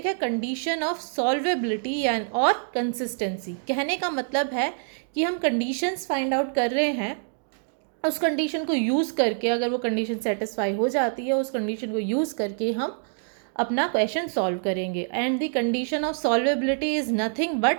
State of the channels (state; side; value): silent; left; 61 dB below the other